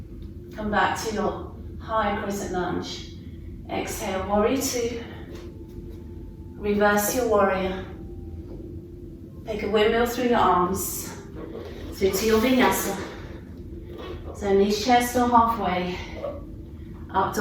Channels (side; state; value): both; identical; correlation 1.00